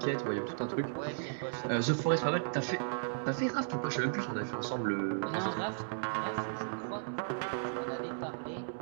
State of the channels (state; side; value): silent; left; digital silence